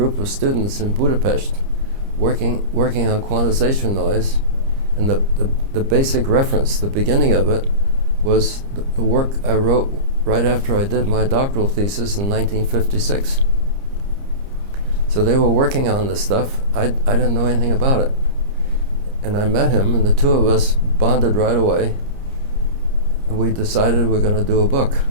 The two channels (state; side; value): late; left; 30 ms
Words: of students in Budapest working on quantization noise. And the basic reference, the beginning of it, was the work I wrote right after I did my doctoral thesis in 1956. So they were working on this stuff. I didn't know anything about it. And I met him, and the two of us bonded right away. And we decided we're going to do a book.